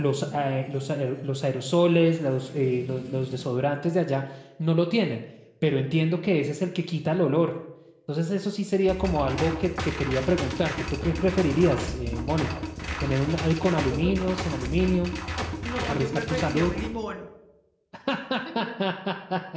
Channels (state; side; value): identical; both; correlation 1.00